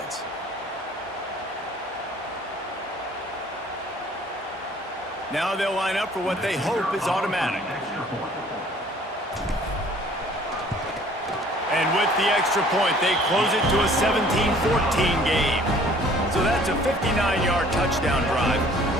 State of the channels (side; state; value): both; normal; correlation 0.54